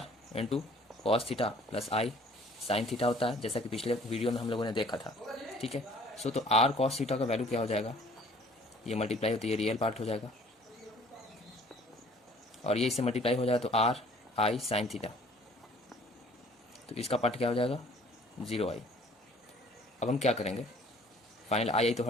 into cos theta plus आई साइन थीटा होता है, जैसा कि पिछले वीडियो में हम लोगों ने देखा था, ठीक है। सो तो r कॉस थीटा का वैल्यू क्या हो जाएगा, ये मल्टीप्लाई होती है, रियल पार्ट हो जाएगा, और ये इससे मल्टीप्लाई हो जाएगा तो r आई साइन थीटा, तो इसका पार्ट क्या हो जाएगा 0i। अब हम क्या करेंगे, फाइनल आई तो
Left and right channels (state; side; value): normal; both; correlation 0.55